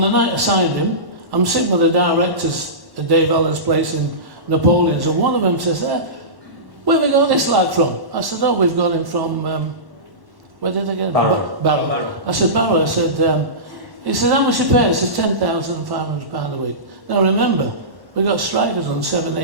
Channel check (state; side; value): late; left; 1.1 ms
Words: the night I signed him, I'm sitting with the directors at Dave Allen's place in Napoleon's, and one of them says, where have we got this lad from? I said, oh, we've got him from, where did I get him? Barrow. I said, Barrow. I said, he said, how much you pay? I said, £10,500 a week. Now remember, we got strikers on